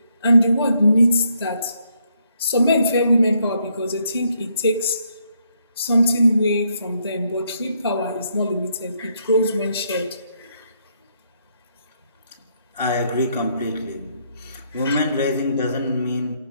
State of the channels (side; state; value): both; inverted; correlation -0.74